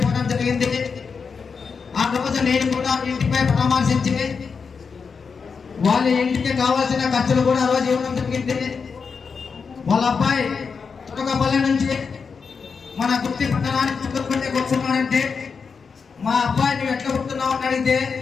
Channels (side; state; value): right; quieter; 5.5 dB